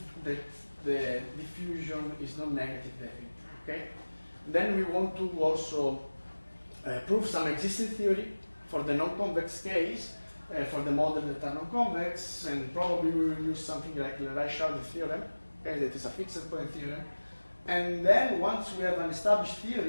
that the diffusion is non-negative definite. Okay. Then we want to also prove some existing theory for the non-convex case, for the model that are non-convex, and probably we will use something like the Reichardt theorem, okay, that is a fixed point theorem. And then once we have an established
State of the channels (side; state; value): both; inverted; correlation -1.00